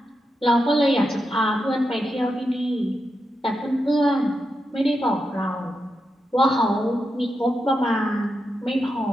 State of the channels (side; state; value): both; normal; correlation 0.87